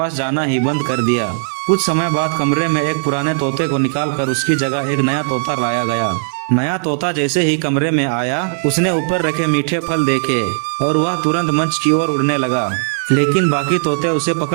जाना ही बंद कर दिया। कुछ समय बाद कमरे में एक पुराने तोते को निकालकर उसकी जगह एक नया तोता लाया गया। नया तोता जैसे ही कमरे में आया, उसने ऊपर रखे मीठे फल देखे और वह तुरंत मंच की ओर उड़ने लगा। लेकिन बाकी तोते उसे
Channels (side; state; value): left; silent; 65 dB below the other